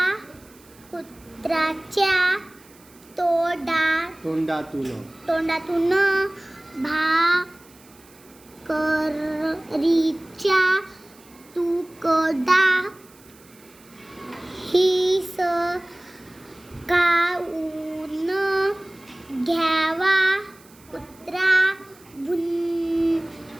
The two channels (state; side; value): noise; right; hiss, 26 dB below the sound